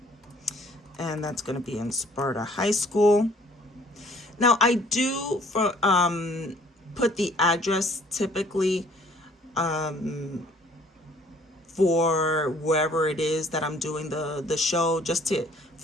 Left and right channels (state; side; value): normal; both; correlation 0.58